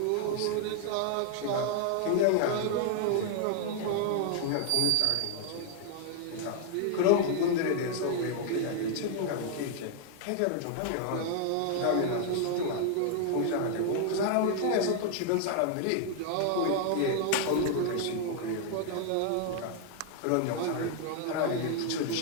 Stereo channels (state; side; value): different; both; correlation 0.00